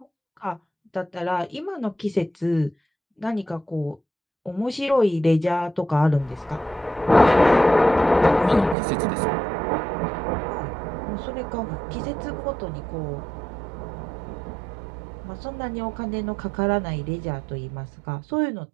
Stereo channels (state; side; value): drops out; left; at 8.8 s